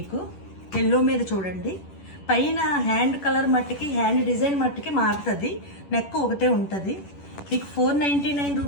ఎల్లో మీద చూడండి. పైన హ్యాండ్ కలర్ మట్టికి, హ్యాండ్ డిజైన్ మట్టికి మారుతుంది. నెక్ ఒకటే ఉంటుంది. మీకు 499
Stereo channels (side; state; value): right; late; 10 ms